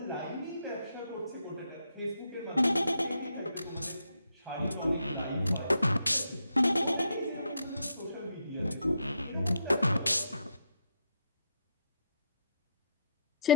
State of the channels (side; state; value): both; inverted; correlation -0.76